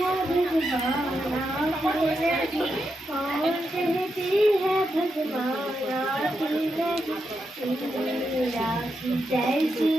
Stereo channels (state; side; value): normal; both; correlation 0.85